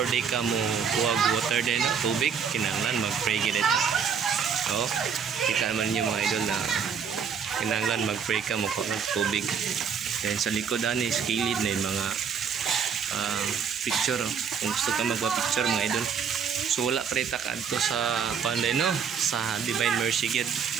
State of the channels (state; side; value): quieter; left; 6.7 dB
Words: they ka mo kuwag water din no? Tubig kinahanglan mag-pray gid ito. So kita naman niyo mga idol na kinahanglan mag-pray ka mo kuwag tubig. Then sa likod ani skilid na yung mga picture oh. Kung gusto ka magpa-picture mga idol. So wala pre ta kadto sa panday no sa Divine Mercy gid.